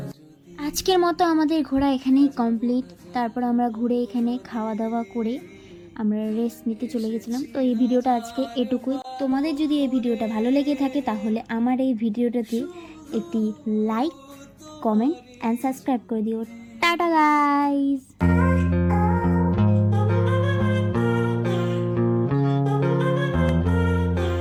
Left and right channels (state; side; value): identical; both; correlation 1.00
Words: আজকের মতো আমাদের ঘোরা এখানেই কমপ্লিট। তারপর আমরা ঘুরে এখানে খাওয়া দাওয়া করে আমরা রেস্ট নিতে চলে গেছিলাম। তো এই ভিডিওটা আজকে এটুকুই। তোমাদের যদি এই ভিডিওটা ভালো লেগে থাকে তাহলে আমার এই ভিডিওটাতে একটি লাইক, কমেন্ট অ্যান্ড সাবস্ক্রাইব করে দিও। Tata guys.